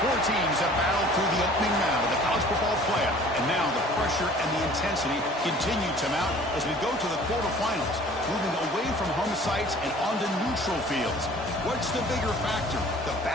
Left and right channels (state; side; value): normal; both; correlation 0.49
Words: Four teams have battled through the opening round of the college football playoff, and now the pressure and the intensity continue to mount as we go to the quarterfinals, moving away from home sites and onto neutral fields. What's the bigger factor, the